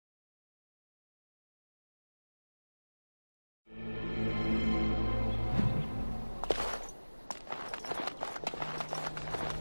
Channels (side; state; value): both; inverted; correlation -1.00